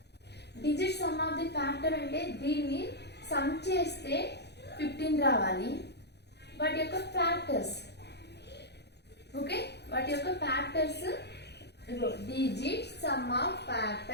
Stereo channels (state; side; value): late; right; 0.49 ms